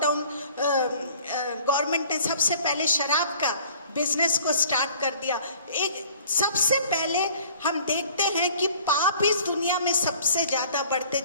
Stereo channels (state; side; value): inverted; both; correlation -0.51